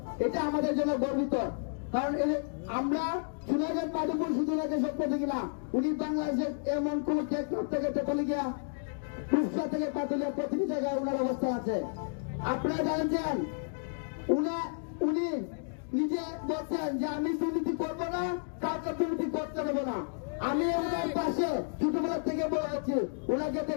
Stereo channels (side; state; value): right; silent; digital silence